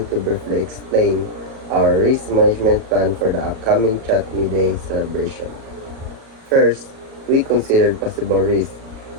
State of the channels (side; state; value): left; late; 37 ms